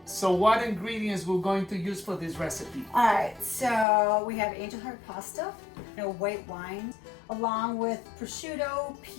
So what ingredients we're going to use for this recipe? All right, so we have angel heart pasta, white wine, along with prosciutto,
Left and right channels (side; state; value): right; drops out; at 3.9 s